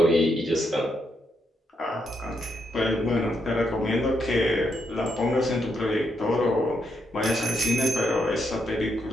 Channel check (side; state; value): both; normal; correlation 0.79